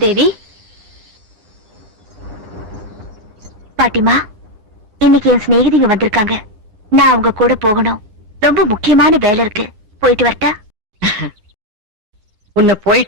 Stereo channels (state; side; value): late; left; 9.6 ms